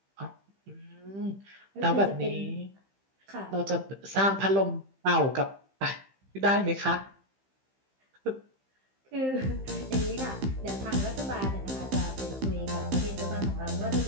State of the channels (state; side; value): late; left; 15 ms